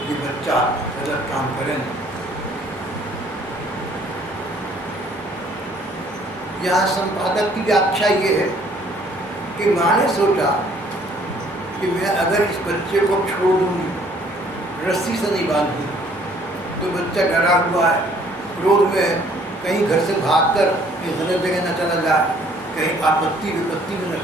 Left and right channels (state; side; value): normal; both; correlation 0.60